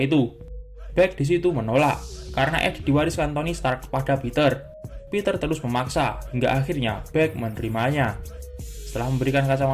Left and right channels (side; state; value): both; identical; correlation 1.00